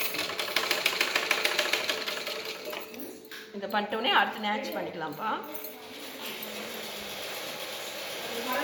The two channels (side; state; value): both; identical; correlation 1.00